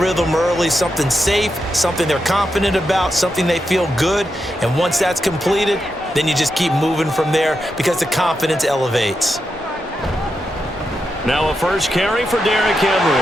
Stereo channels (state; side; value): normal; both; correlation 0.86